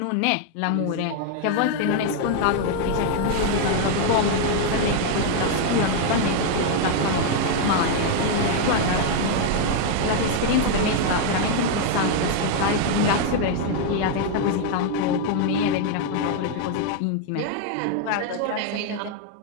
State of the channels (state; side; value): different; both; correlation 0.00